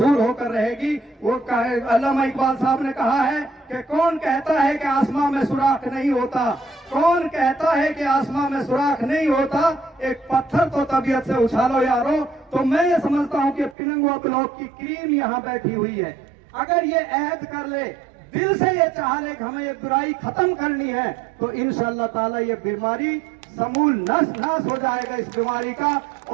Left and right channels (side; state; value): left; drops out; at 13.8 s